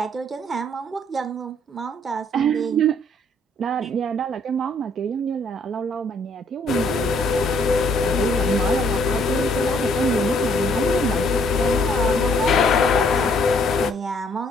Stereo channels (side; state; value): both; normal; correlation 0.64